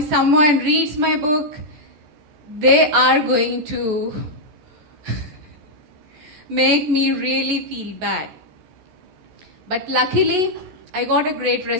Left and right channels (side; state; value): left; late; 14 ms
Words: someone reads my book, they are going to make me really feel bad. But luckily, I got a great